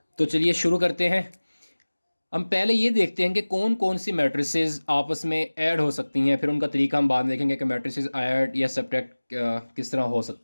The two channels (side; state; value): both; inverted; correlation -1.00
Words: तो चलिए शुरू करते हैं। हम पहले ये देखते हैं कि कौन कौन सी मैट्रिसेस आपस में ऐड हो सकती हैं, फिर उनका तरीका हम बाद में देखेंगे कि मैट्रिसेस ऐड या सब्ट्रैक्ट किस तरह हो